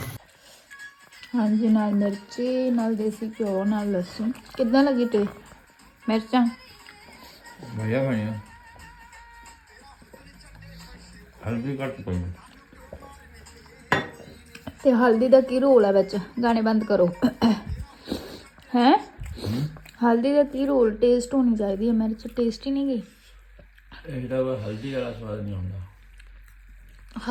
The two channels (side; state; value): both; identical; correlation 1.00